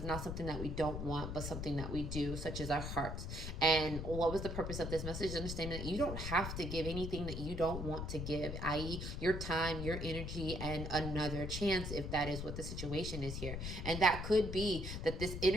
not something that we don't want, but something that we do, such as our hearts. And what was the purpose of this message? Understanding that you don't have to give anything that you don't want to give, i.e. your time, your energy, and another chance, if that is what the situation is here. And that could be that this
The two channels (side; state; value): left; noise; rumble, 5 dB below the sound